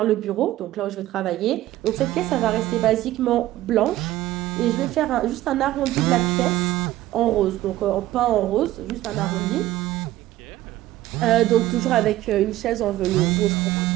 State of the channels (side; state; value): left; quieter; 15.2 dB